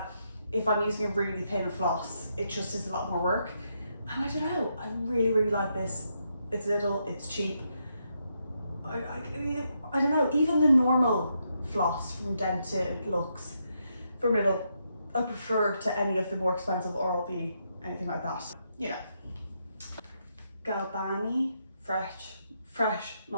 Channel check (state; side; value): inverted; both; correlation -0.80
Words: if I'm using a really thin floss, it just is a lot more work. And I don't know, I really, really like this. It's little, it's cheap. I don't know, even the normal floss from Dentalux, from Little, I prefer to any of the more expensive Oral-B, anything like that. You know. Galbani fresh